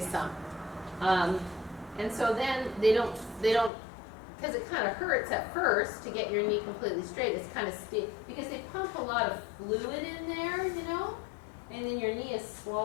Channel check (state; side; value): drops out; right; at 3.7 s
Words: And so then they don't, because it kind of hurts at first to get your knee completely straight. It's kind of stiff because they pump a lot of fluid in there, and then your knee is